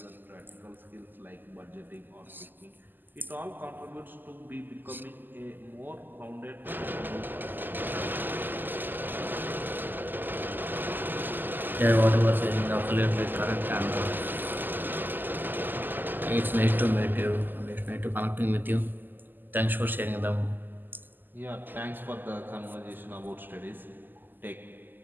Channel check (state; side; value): late; left; 0.090 ms